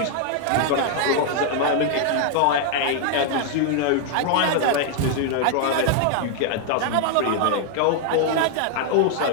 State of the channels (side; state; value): both; different; correlation 0.00